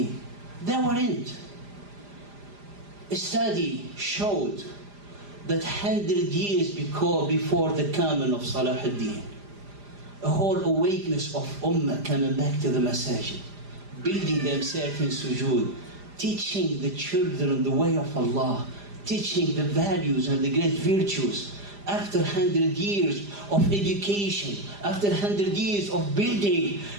They weren't. A study showed that 100 years before the coming of Salahuddin, a whole awakeness of ummah coming back to the masajid, building themselves in sujood, teaching the children the way of Allah, teaching the values and the great virtues. After 100 years of education, after 100 years of building,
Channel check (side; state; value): left; late; 5.0 ms